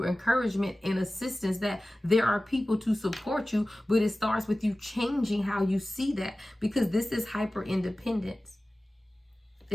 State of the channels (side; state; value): both; normal; correlation 0.96